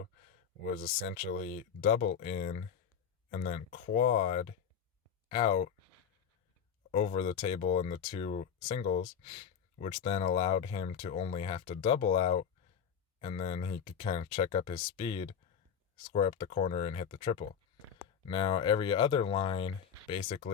was essentially double in and then quad out over the table in the two singles, which then allowed him to only have to double out, and then he could kind of check up his speed, square up the corner, and hit the triple. Now, every other line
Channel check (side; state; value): right; quieter; 7.7 dB